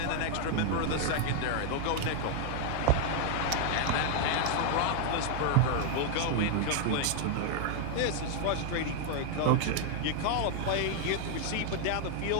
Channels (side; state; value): both; different; correlation 0.00